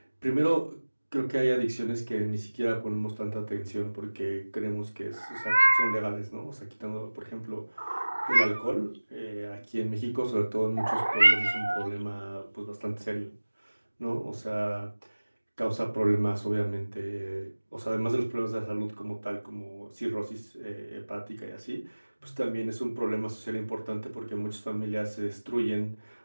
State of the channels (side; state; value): both; inverted; correlation -1.00